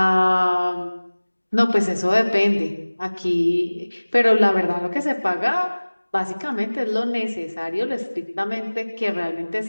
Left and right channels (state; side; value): inverted; both; correlation -1.00